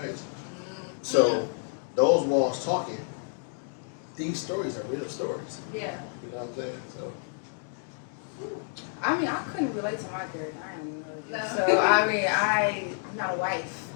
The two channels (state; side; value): silent; right; 58 dB below the other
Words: face. So those walls talking, these stories are real stories. Yeah. You know what I'm saying? So I mean, I couldn't relate to my character. I am No. So I mean, I'm not a wife.